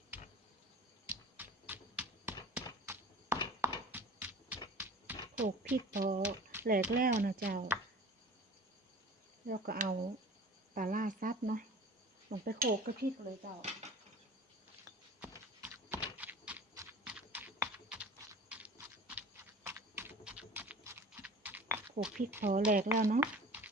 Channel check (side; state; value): both; normal; correlation 0.42